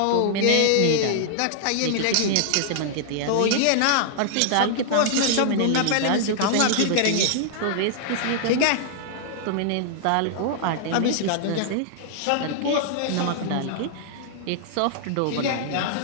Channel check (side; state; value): both; different; correlation -0.01